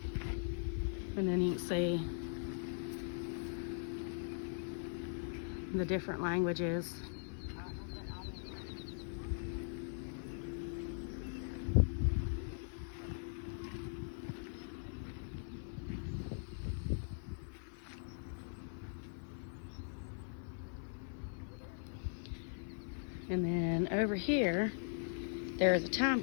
And then you can see the different languages. And then over here, there is a time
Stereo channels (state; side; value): silent; right; 51 dB below the other